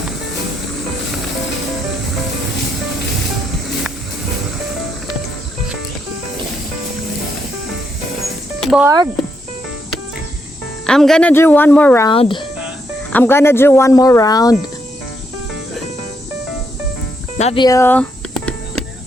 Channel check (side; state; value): both; normal; correlation 0.78